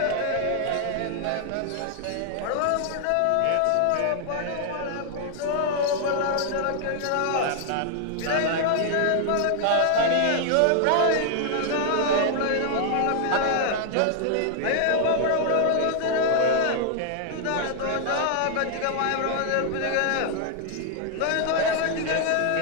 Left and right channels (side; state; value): both; different; correlation 0.00